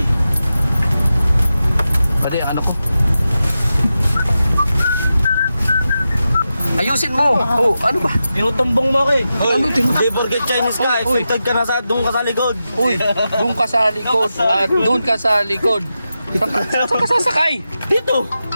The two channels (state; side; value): inverted; both; correlation -0.91